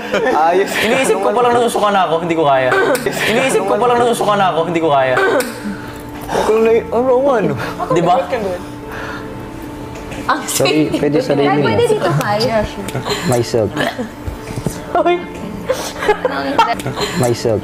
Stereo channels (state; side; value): identical; both; correlation 1.00